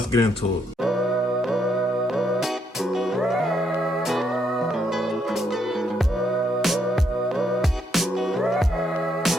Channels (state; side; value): normal; both; correlation 0.75